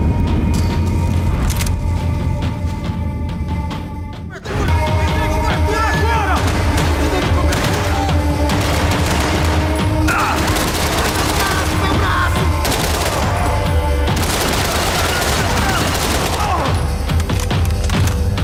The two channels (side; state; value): both; identical; correlation 1.00